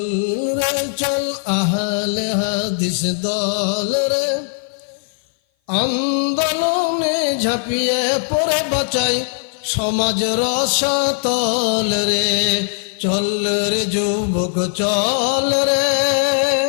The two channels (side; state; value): right; silent; 56 dB below the other